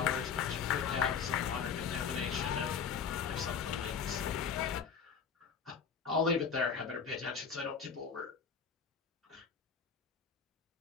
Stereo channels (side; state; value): right; quieter; 6.5 dB